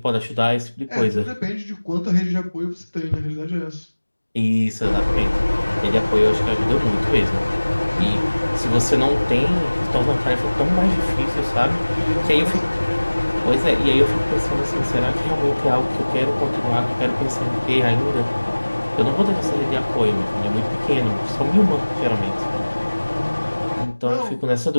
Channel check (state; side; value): inverted; both; correlation -1.00